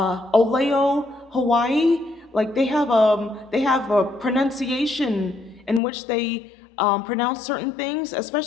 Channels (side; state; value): right; drops out; at 5.8 s